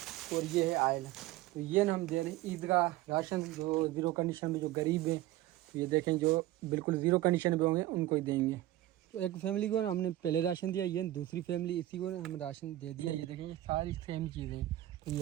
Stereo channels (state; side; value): quieter; left; 15.4 dB